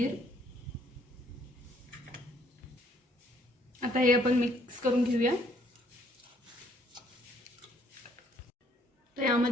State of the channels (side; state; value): both; normal; correlation 0.65